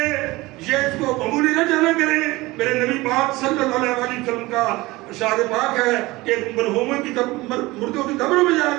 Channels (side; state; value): left; quieter; 20.7 dB